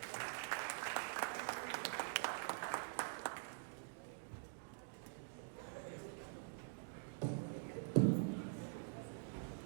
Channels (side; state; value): left; silent; digital silence